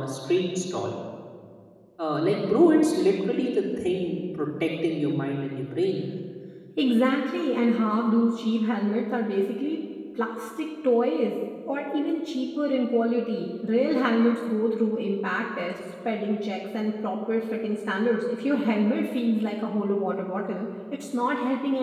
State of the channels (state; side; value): identical; both; correlation 1.00